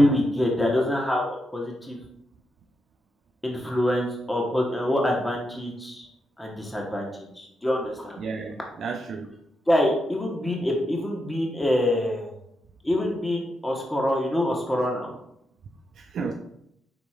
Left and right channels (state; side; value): normal; both; correlation 0.85